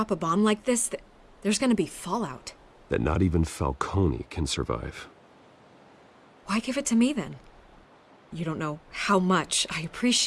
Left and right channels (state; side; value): identical; both; correlation 1.00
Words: a bomb like this, there's gonna be fallout. That not even Falcone can survive. Why give it to me then? You don't know how much I